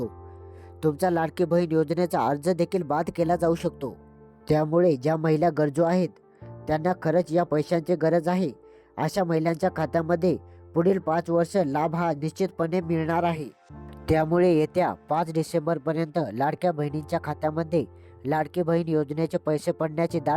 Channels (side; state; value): both; identical; correlation 1.00